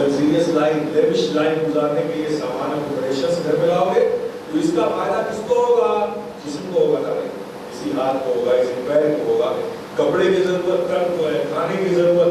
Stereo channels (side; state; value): both; identical; correlation 1.00